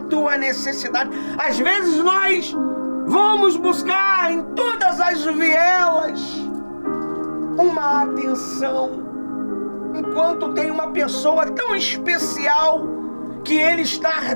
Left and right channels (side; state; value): both; inverted; correlation -1.00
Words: necessidade. Às vezes nós vamos buscar em todas as vielas uma atenção, enquanto tem uma pessoa tão especial que ele está